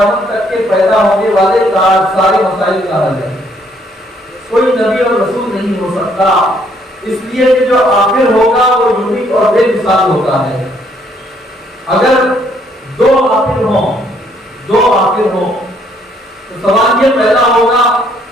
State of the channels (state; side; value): normal; both; correlation 0.67